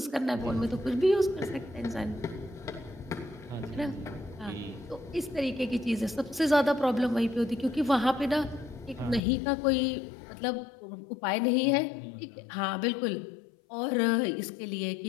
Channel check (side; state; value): right; drops out; at 9.2 s